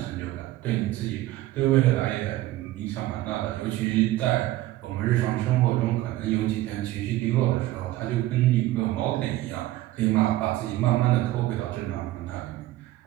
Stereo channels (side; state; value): left; quieter; 15.9 dB